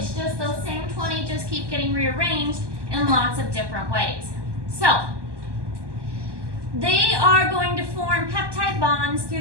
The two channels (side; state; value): left; late; 1.2 ms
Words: just those same 20 just keep getting rearranged in lots of different ways. So they are going to form peptide bonds through